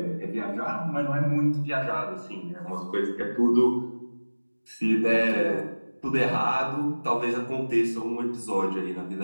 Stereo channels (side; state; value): both; inverted; correlation -1.00